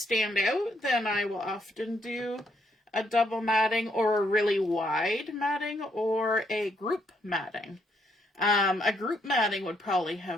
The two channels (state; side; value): normal; both; correlation 0.74